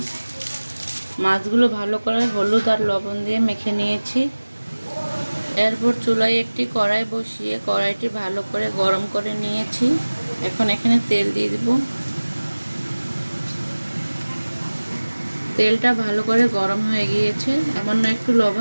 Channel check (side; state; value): both; inverted; correlation -1.00